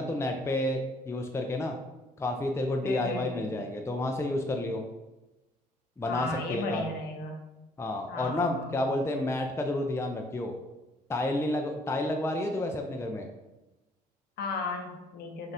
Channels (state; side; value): normal; both; correlation 0.64